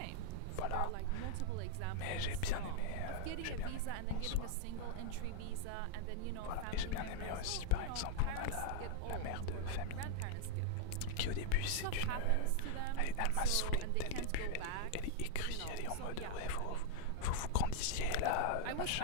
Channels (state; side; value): different; both; correlation 0.00